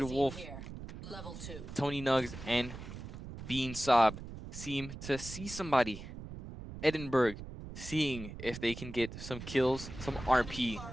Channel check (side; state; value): right; noise; rumble, 11 dB below the sound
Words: magazine Wolf, here. Level 2. Tony Nugs, and Bean Sob seem to see somebody. Edinburgh seeing if they can get some kills, some RP